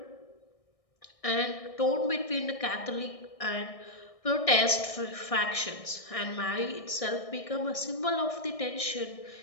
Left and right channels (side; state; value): right; late; 1.6 ms